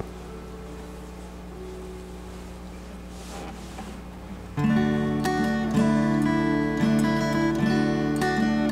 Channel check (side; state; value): both; identical; correlation 1.00